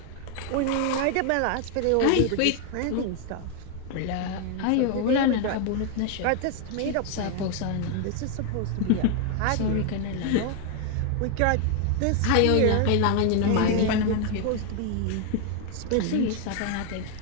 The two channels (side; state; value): both; different; correlation 0.01